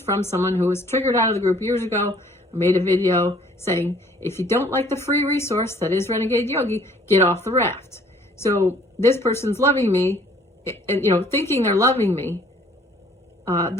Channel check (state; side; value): normal; both; correlation 0.58